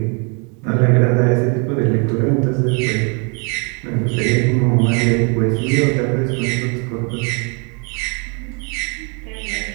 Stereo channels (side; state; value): left; quieter; 34.7 dB